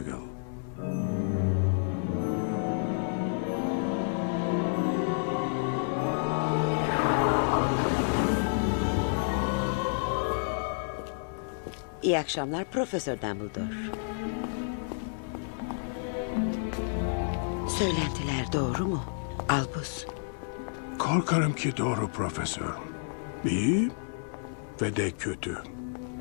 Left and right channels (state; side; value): silent; right; 58 dB below the other